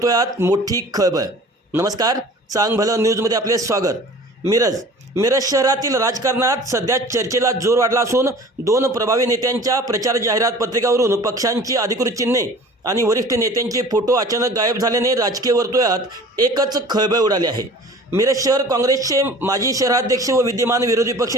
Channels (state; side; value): normal; both; correlation 0.44